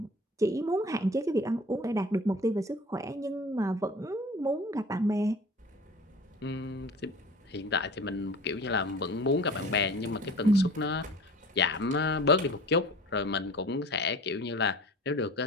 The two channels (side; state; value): both; normal; correlation 0.42